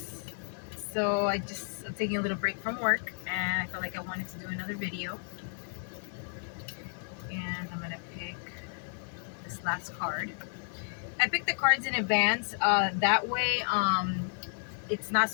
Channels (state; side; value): silent; right; 56 dB below the other